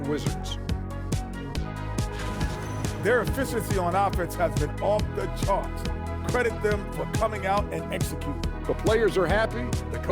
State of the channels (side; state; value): both; identical; correlation 1.00